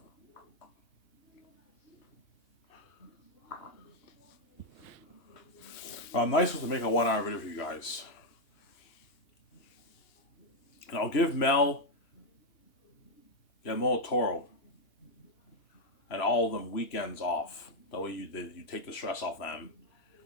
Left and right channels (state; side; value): late; right; 3.0 ms